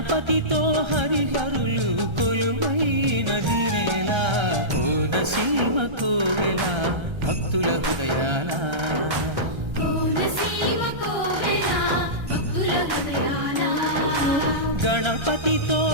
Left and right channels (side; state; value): left; late; 1.3 ms